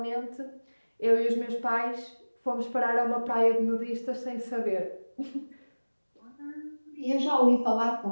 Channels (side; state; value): both; inverted; correlation -1.00